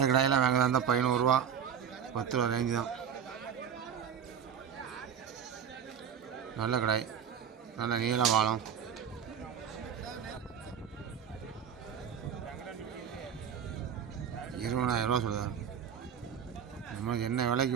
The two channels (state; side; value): quieter; left; 8.0 dB